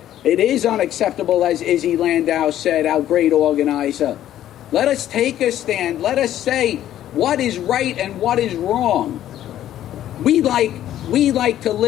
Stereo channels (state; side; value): quieter; right; 12.1 dB